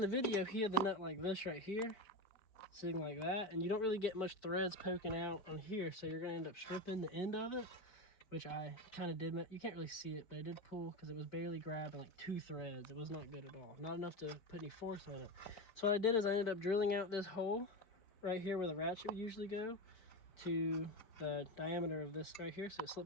video, he had the nut like this right here, sitting like that, and you don't really get much threads poking out on here, so you're gonna end up stripping the end of it, which I kind of did. You can't really see it, but I did pull because it was barely grabbing like 2 threads. It was not good at all, not enough to put any force on it. So what I did is I ended up drilling out this hole right here where the ratchet would usually go to the diameter of this right here, so it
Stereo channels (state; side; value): late; right; 4.5 ms